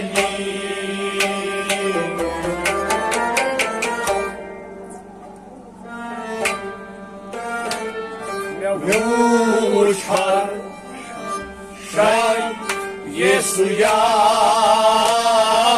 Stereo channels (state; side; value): identical; both; correlation 1.00